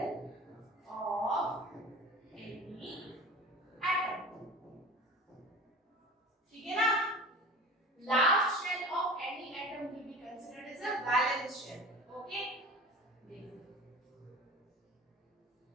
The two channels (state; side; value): normal; both; correlation 0.38